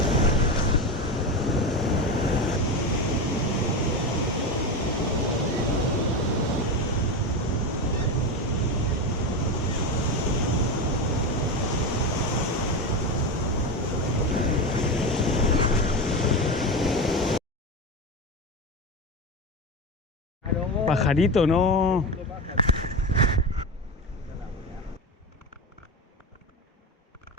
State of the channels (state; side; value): normal; both; correlation 0.19